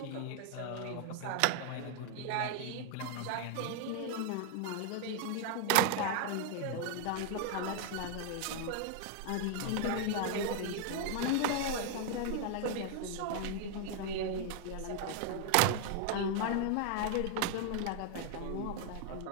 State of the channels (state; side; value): different; both; correlation 0.00